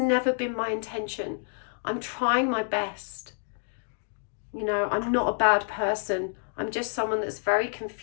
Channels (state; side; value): silent; right; 59 dB below the other